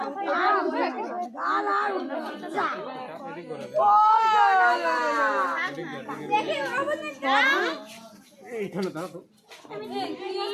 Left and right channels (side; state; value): both; identical; correlation 1.00